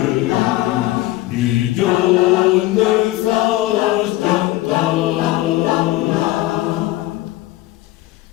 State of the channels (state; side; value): quieter; right; 17.2 dB